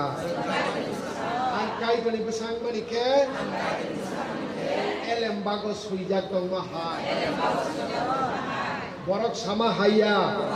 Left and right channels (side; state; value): both; identical; correlation 1.00